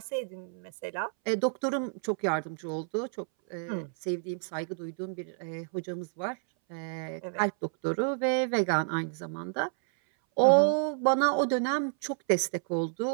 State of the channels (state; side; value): silent; left; 58 dB below the other